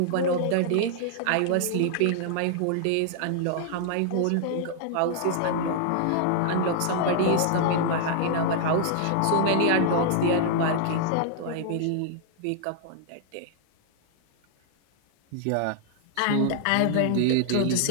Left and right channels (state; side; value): different; both; correlation -0.01